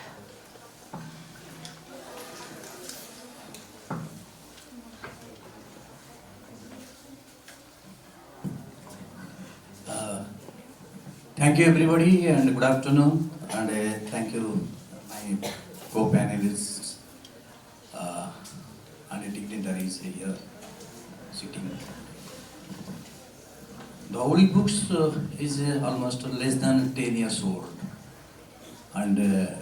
Thank you everybody and good afternoon, and thank you my co-panelists and dignitaries here sitting. The Holy Books is almost less than 10 years old, and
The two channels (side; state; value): both; identical; correlation 1.00